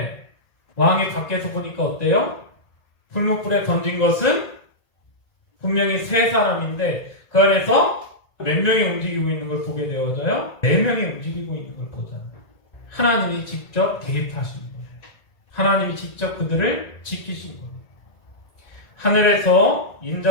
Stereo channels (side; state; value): right; late; 1.9 ms